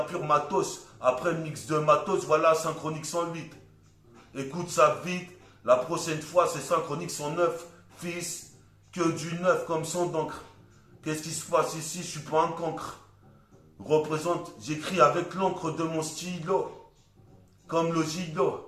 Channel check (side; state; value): both; identical; correlation 1.00